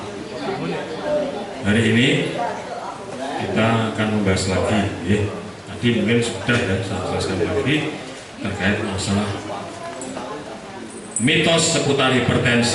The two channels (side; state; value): both; identical; correlation 1.00